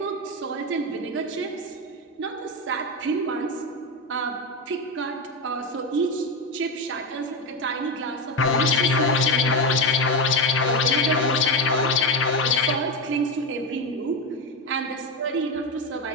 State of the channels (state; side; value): normal; both; correlation 0.13